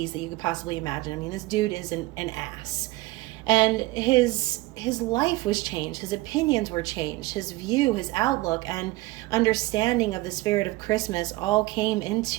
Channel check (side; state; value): left; quieter; 20.0 dB